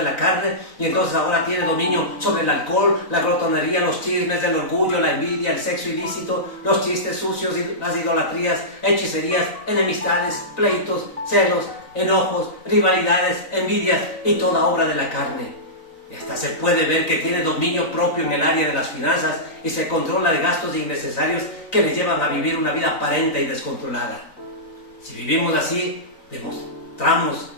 la carne y entonces ahora tiene dominio sobre el alcohol, la glotonería, los chismes, el orgullo, la envidia, el sexo ilícito, los chistes sucios, las idolatrías, hechicerías, enemistades, pleitos, celos, enojos, rivalidades, envidias y toda obra de la carne. Y hasta se puede ver que tiene dominio propio en el área de las finanzas y se controla de gastos innecesarios que le llevan a vivir una vida aparente y descontrolada. Si vivimos así, demostramos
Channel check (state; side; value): late; right; 3.9 ms